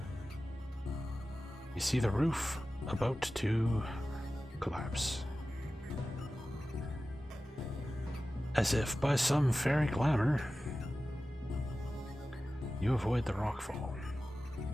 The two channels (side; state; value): both; normal; correlation 0.95